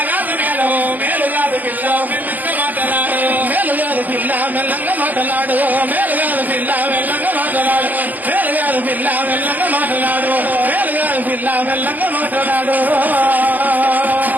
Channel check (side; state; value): left; late; 0.083 ms